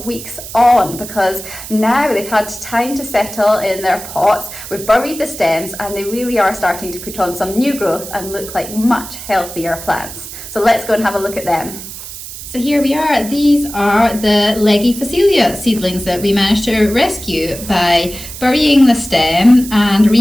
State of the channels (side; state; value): right; noise; hiss, 12 dB below the sound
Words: weeks on, because now they've had time to settle in their pots, we've buried the stems, and they really are starting to put on some new growth and look like much healthier plants. So let's go and have a look at them. So here we are. These are the leggy Phacelia seedlings that we managed to rescue by burying the stem and